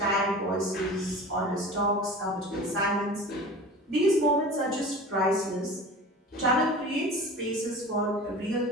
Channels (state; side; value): normal; both; correlation 0.37